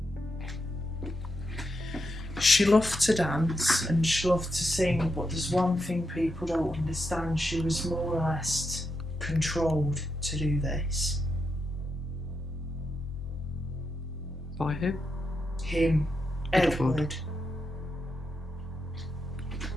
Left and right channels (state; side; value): normal; both; correlation 0.84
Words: She loved to dance and she loved to sing, but there's one thing people don't understand. She was more or less controlled to do this. By who? Him. Edward.